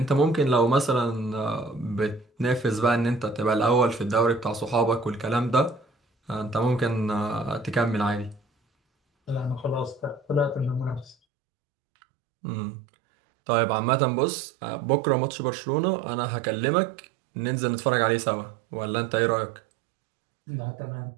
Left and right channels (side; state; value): left; drops out; at 11.2 s